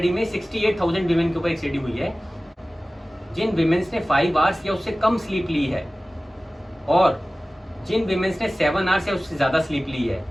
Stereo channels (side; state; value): both; normal; correlation 0.97